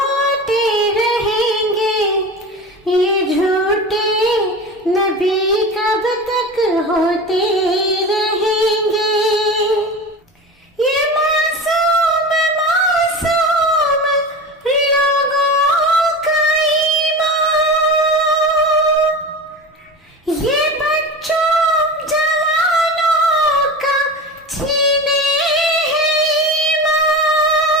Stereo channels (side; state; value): both; normal; correlation 0.29